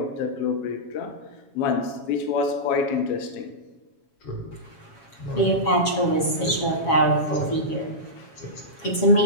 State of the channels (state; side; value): late; right; 7.2 ms